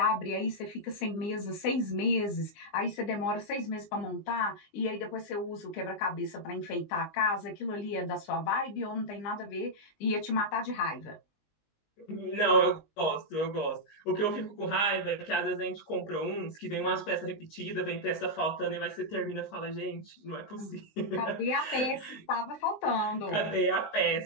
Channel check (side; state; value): right; late; 19 ms